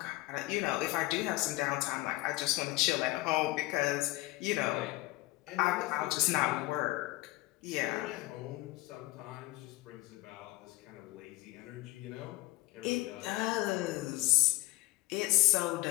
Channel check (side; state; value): right; quieter; 19.1 dB